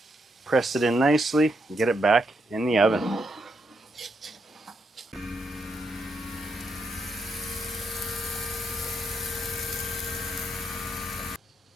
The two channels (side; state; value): both; normal; correlation 0.80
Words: Press it in nicely and get it back in the oven.